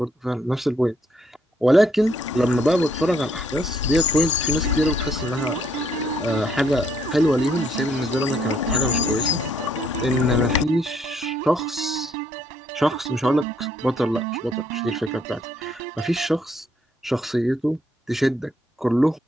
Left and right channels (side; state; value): both; normal; correlation 0.69